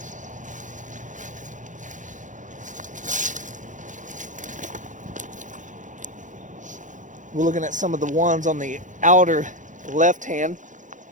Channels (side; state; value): left; late; 0.37 ms